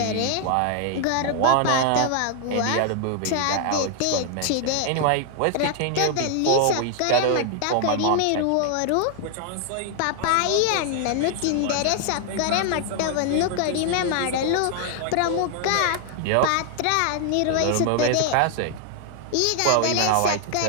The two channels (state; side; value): different; both; correlation 0.00